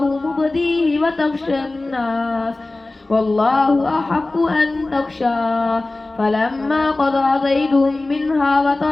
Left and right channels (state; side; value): quieter; right; 3.0 dB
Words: مبديه وتخشى الناس والله أحق أن تخشى فلما قضى زيد منها